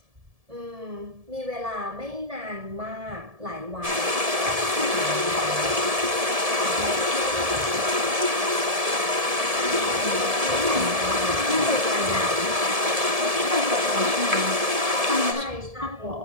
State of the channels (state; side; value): late; left; 1.7 ms